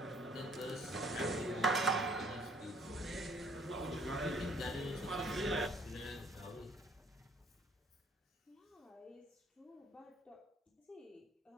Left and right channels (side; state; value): both; normal; correlation 0.59